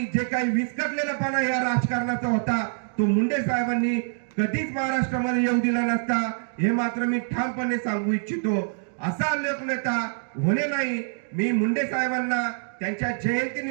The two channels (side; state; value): left; silent; digital silence